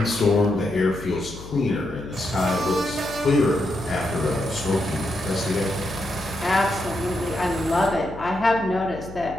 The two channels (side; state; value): left; noise; hum, 14 dB below the sound